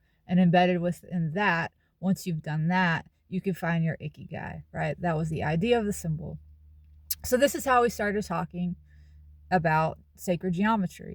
And embedded within that, once you've done that, you can find your Ikigai, right? That was the idea of the symbol. So this is how we started talking about sacred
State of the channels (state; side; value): identical; both; correlation 1.00